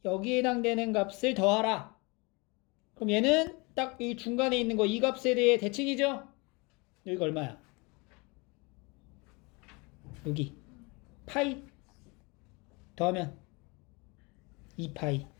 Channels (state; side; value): quieter; right; 28.0 dB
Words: 여기에 해당되는 값을 더하라. 그럼 얘는 딱 이 중간에 있는 거 이 값에 대해 대칭이죠? 여기가 얼마야? 여기 파이 더하면 2파이.